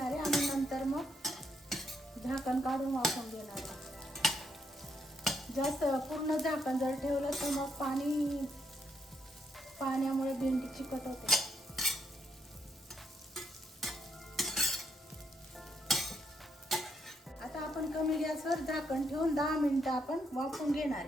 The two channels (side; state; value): both; normal; correlation 0.77